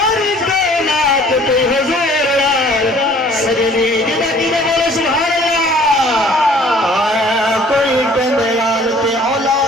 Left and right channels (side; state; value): both; normal; correlation 0.54